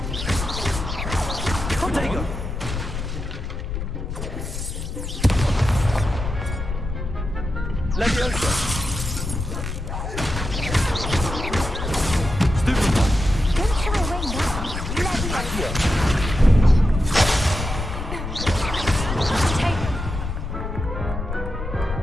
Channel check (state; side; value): noise; left; rumble, 5 dB below the sound